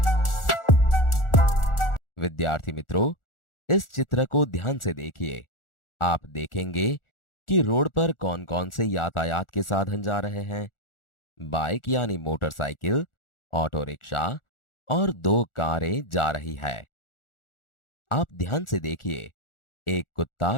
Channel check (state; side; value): late; right; 1.4 ms